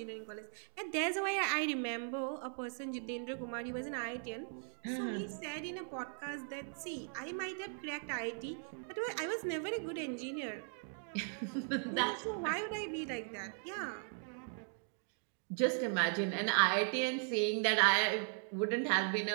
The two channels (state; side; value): silent; left; 52 dB below the other